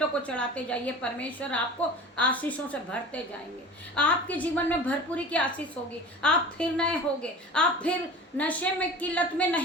को चढ़ाते जाइए, परमेश्वर आपको आशीषों से भरते जाएंगे। आपके जीवन में भरपूरी की आशीष होगी, आप फिर नए होगे, आप फिर नशे में की लत में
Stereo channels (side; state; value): both; normal; correlation 0.38